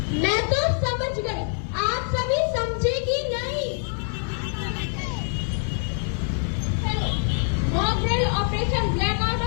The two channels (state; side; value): silent; right; 56 dB below the other